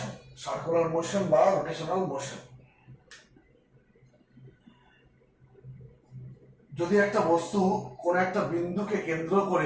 সার্কুলার মোশন বা রোটেশনাল মোশন। যদি একটা বস্তু কোন একটা বিন্দুকে কেন্দ্র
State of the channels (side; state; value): both; identical; correlation 1.00